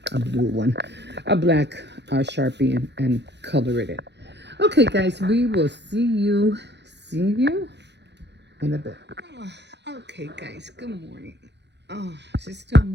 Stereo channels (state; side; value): late; left; 0.50 ms